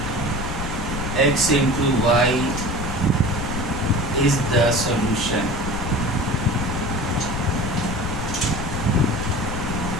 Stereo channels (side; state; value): left; noise; rumble, 6 dB below the sound